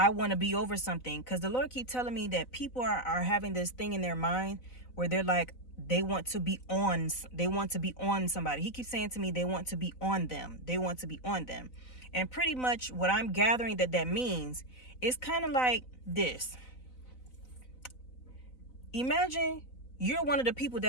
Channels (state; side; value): late; right; 4.0 ms